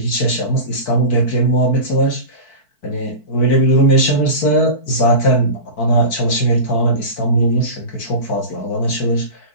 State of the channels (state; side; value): late; right; 4.5 ms